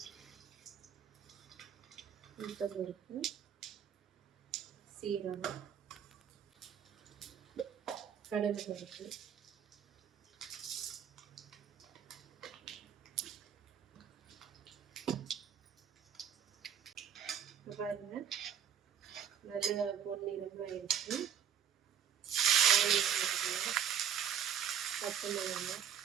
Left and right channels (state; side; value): quieter; left; 8.6 dB